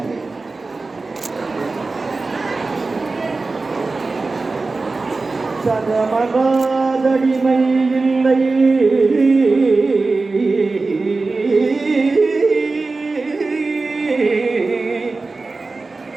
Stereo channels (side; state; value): left; quieter; 3.7 dB